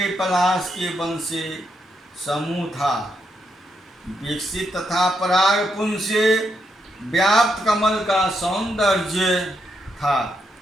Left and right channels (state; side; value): normal; both; correlation 0.80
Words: पलाश के वन से समूह था, विकसित तथा पराग पुंज से व्याप्त कमल का सौंदर्य था,